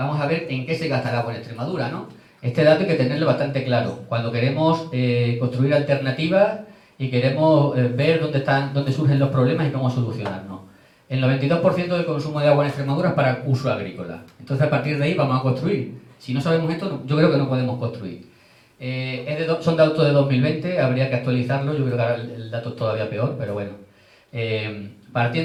a ver en qué se gasta el agua en Extremadura, ¿no? Este dato hay que tenerlo bastante claro. Cuando queremos construir alternativas y queremos ver dónde surgen los problemas y cómo solucionarlos. El 92% del consumo de agua en Extremadura es para uso agrícola. Entonces, a partir de ahí vamos a construir. Si no sabemos esto, yo creo que no podemos construir. Son datos de 2020, habría que actualizarlo. Yo creo que ahora el dato es todavía peor, pero bueno.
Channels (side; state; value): both; identical; correlation 1.00